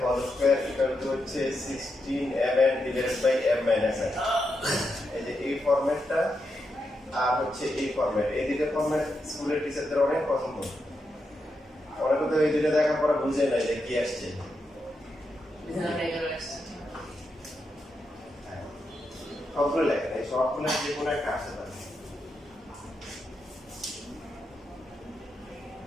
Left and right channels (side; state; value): both; normal; correlation 0.85